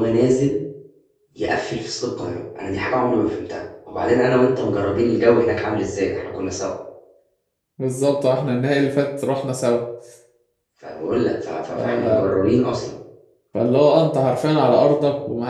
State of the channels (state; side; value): identical; both; correlation 1.00